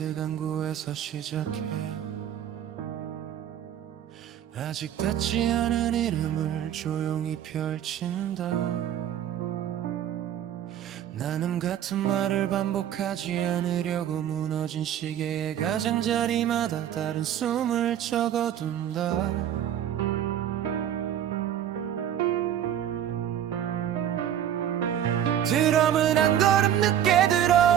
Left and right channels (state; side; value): quieter; left; 10.4 dB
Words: 시작해 아직 닿지 않은 이름을 조용히 펼친다. 나는 같은 말을 반복하지 않으려고 무너진 시계의 가장자리마다 다른 숨을 적어둔다. 드럼은 한 걸음 늦게